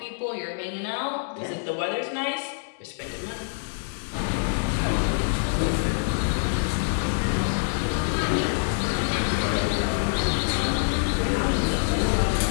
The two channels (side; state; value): right; silent; digital silence